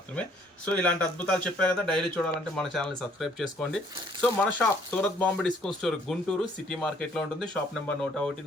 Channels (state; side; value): normal; both; correlation 0.62